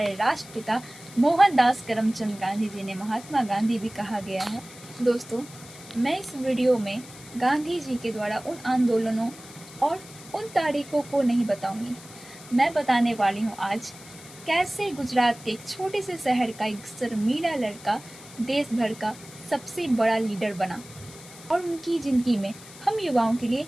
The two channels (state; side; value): noise; left; hiss, 18 dB below the sound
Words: राष्ट्रपिता मोहनदास करमचंद गांधी जी ने महात्मा गांधी भी कहा गया है। दोस्तों, मैं इस वीडियो में गांधी जी के द्वारा उन आंदोलनों और उन तारीखों को नहीं बताऊंगी। मैं बताने वाली हूँ आज कैसे गुजरात के एक छोटे से शहर का एक शर्मीला लड़का देश भर का सबसे बड़ा लीडर बना और उनकी जिंदगी में हम युवाओं के लिए